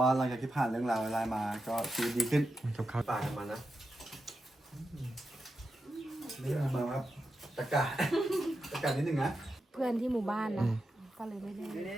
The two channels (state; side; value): normal; both; correlation 0.88